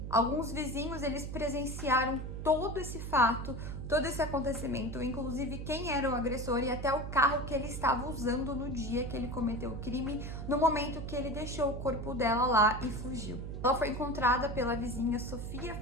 Alguns vizinhos, eles presenciaram todo esse fato, todo esse acontecimento, inclusive quem era o agressor e até o carro que ele estava usando no dia que ele cometeu o crime, no momento que ele deixou o corpo dela lá e fugiu. Ela foi encontrada pela vizinha Sofia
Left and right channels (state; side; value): noise; right; hum, 6 dB below the sound